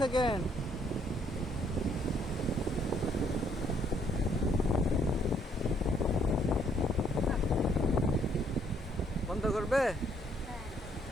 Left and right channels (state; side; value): normal; both; correlation 0.67